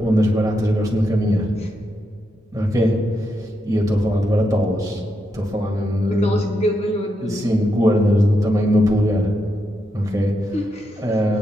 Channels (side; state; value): both; normal; correlation 0.83